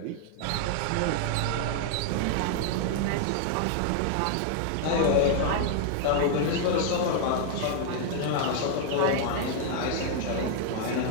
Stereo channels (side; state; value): both; different; correlation 0.00